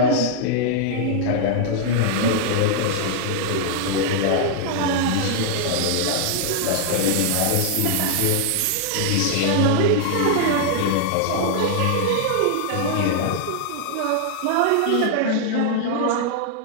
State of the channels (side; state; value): both; different; correlation -0.01